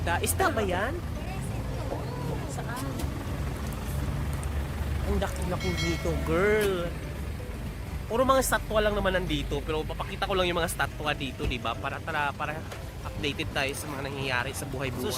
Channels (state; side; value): identical; both; correlation 1.00